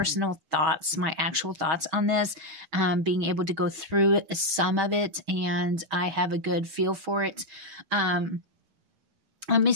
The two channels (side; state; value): left; late; 6.3 ms